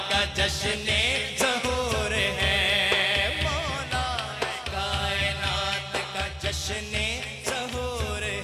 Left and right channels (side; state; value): both; identical; correlation 1.00